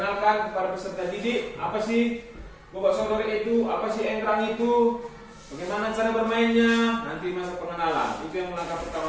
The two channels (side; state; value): both; identical; correlation 1.00